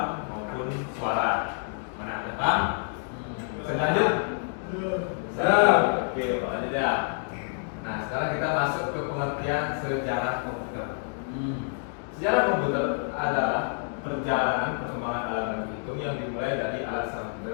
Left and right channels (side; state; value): right; silent; 59 dB below the other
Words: maupun suara. Mana ada Pak? Selanjut. Oke, Pak lanjut ya. Nah, sekarang kita masuk ke pengertian sejarah komputer. Sejarah komputer adalah perjalanan perkembangan alat hitung yang dimulai dari alat